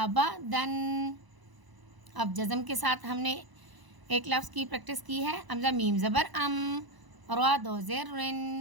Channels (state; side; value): late; left; 1.0 ms